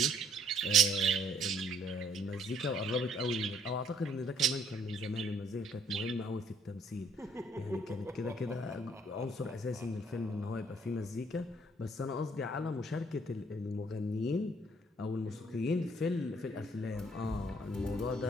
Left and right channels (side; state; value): both; normal; correlation 0.64